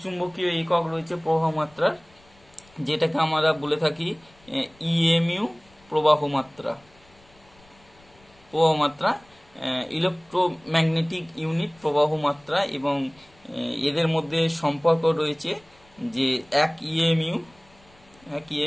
চুম্বকীয় একক রয়েছে প্রবাহ মাত্রার, যেটাকে আমরা বলে থাকি ইএমইউ প্রবাহ মাত্রা, ইলেকট্রোম্যাগনেটিক ইউনিট প্রবাহ মাত্রা। এবং এদের মধ্যে সম্পর্ক রয়েছে যে 1 ইএমইউ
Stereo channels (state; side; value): noise; left; rumble, 29 dB below the sound